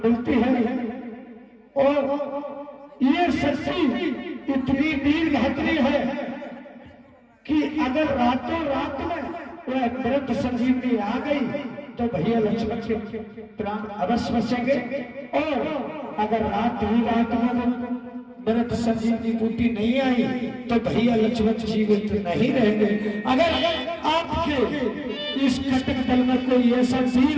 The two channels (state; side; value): identical; both; correlation 1.00